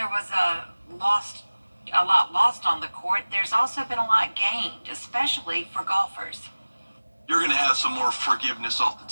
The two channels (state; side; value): inverted; both; correlation -1.00